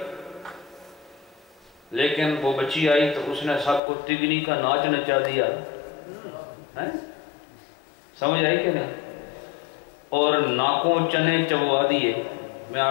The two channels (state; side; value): drops out; right; at 3.8 s